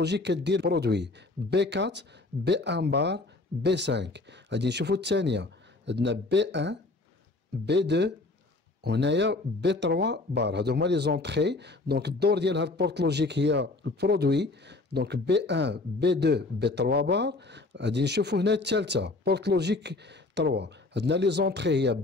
كدير برودوي بي 4 بي 1 بار بي 5. غادي نشوفوا الثانيه عندنا بي 1 بي 2 وهنايا بي 3 بار. هادو هما لي زونطري. دونك الدور ديال هاد البورت لوجيك هي البرودوي. دونك بي 1 بي 2 بي 3 بار. غادي نشوفوا هنا الثالثه بورت لوجيك 3. عندنا لي زونطري هي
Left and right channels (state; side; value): quieter; right; 3.2 dB